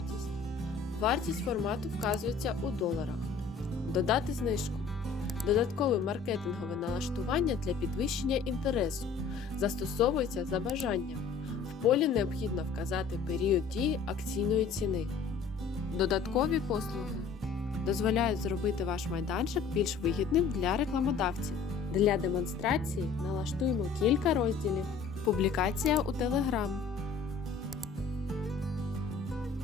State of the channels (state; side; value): quieter; right; 5.3 dB